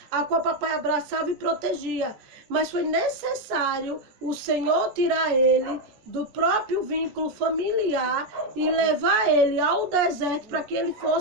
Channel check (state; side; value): late; left; 14 ms